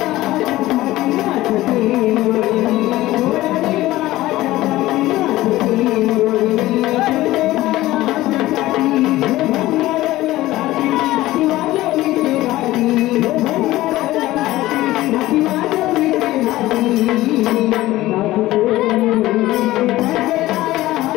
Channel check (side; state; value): right; quieter; 16.8 dB